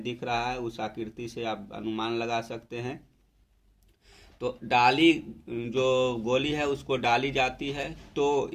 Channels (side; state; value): both; identical; correlation 1.00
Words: दिख रहा है उस आकृति से आप अनुमान लगा सकते हैं। तो डाली जो गोली है उसको डाली जाती है, तो